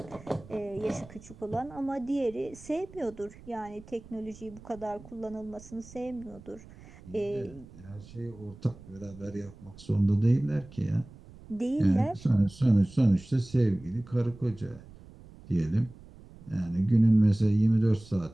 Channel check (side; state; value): right; noise; rumble, 20 dB below the sound